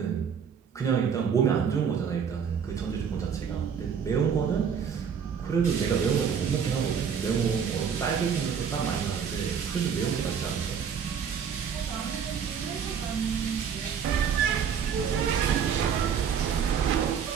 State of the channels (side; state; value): left; quieter; 7.2 dB